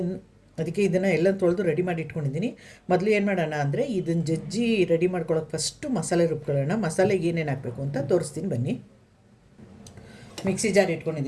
ಅದಕ್ಕೆ ಇದನ್ನು ಎಲ್ಲ ತೊಳೆದು ರೆಡಿ ಮಾಡಿ ಇಟ್ಕೊಂಡಿದ್ದೀನಿ. ಮೊದಲು ಏನು ಮಾಡೋಣ ಅಂದರೆ ಇದನ್ನು ಜಜ್ಜಿ ರೆಡಿ ಮಾಡ್ಕೊಳ್ಳೋಕೆ ಫಸ್ಟು ಮಸಾಲೆ ರುಬ್ಕೊಳ್ಳೋಣ. ಮಸಾಲೆಗೆ ಏನೇನು ಹಾಕಬೇಕು ಅಂತ ತೋರಿಸ್ತೀನಿ ಬನ್ನಿ. ಮಿಕ್ಸಿ ಜಾರ್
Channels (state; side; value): identical; both; correlation 1.00